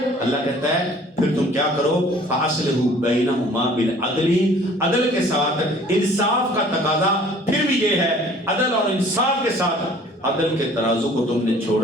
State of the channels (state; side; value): normal; both; correlation 0.52